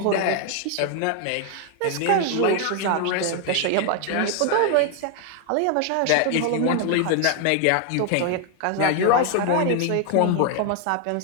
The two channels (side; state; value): both; different; correlation 0.00